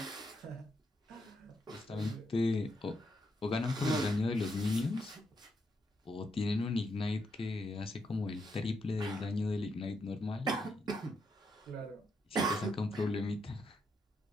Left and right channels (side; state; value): both; normal; correlation 0.80